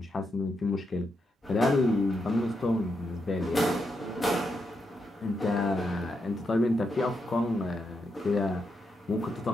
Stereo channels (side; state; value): both; normal; correlation 0.83